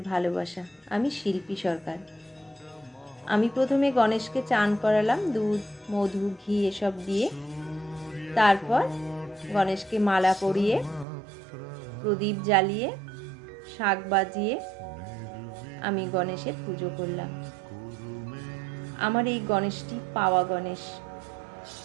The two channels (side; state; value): left; drops out; at 11.1 s